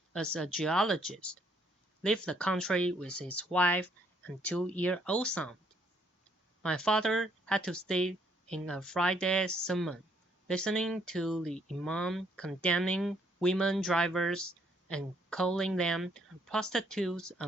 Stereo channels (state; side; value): normal; both; correlation 0.68